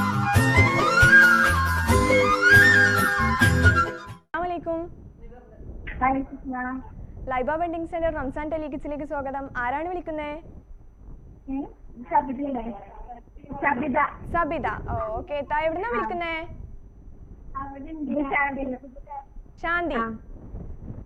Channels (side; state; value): both; identical; correlation 1.00